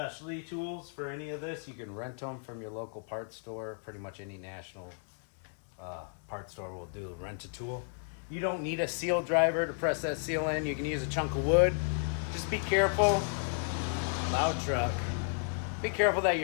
tools for any of this, you can rent them from your local parts store. Pretty much any national parts store will do rent a tool. You don't need a seal driver to press that seal in. You can use a chunk of wood. Just be careful. Loud truck. Be careful that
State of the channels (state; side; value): silent; right; 56 dB below the other